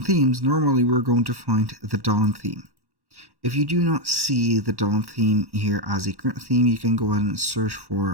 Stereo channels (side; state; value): left; late; 1.1 ms